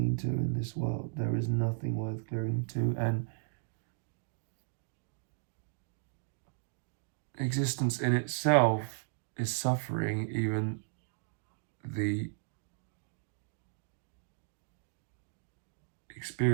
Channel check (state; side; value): silent; left; digital silence